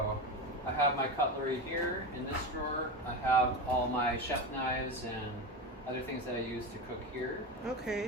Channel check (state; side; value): normal; both; correlation 0.21